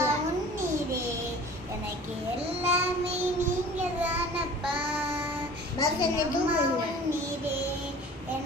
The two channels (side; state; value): both; normal; correlation 0.44